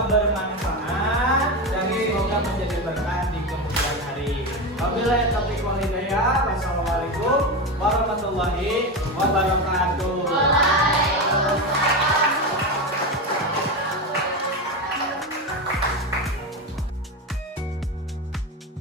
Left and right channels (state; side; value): normal; both; correlation 0.18